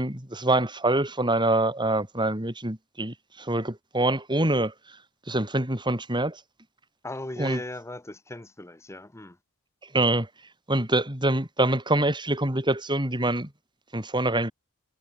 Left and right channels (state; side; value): normal; both; correlation 0.52